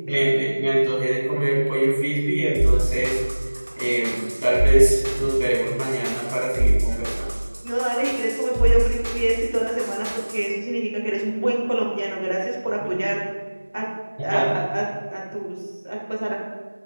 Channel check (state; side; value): inverted; both; correlation -1.00